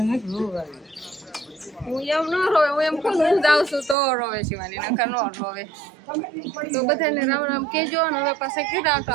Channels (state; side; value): drops out; left; at 4.0 s